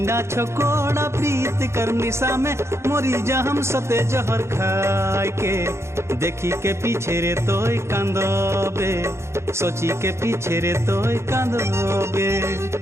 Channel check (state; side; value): late; left; 0.13 ms